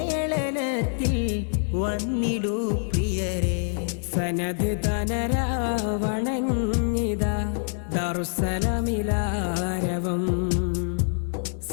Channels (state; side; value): silent; right; 61 dB below the other